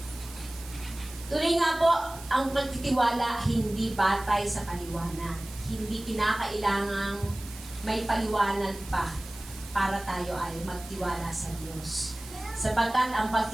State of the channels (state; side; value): noise; right; hiss, 17 dB below the sound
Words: Tuloy nga po, ang pagtitiwala hindi batay sa paliwanag. Hindi kinakailangang may paliwanag pa para tayo ay magtiwala sa Diyos. Sapagkat ang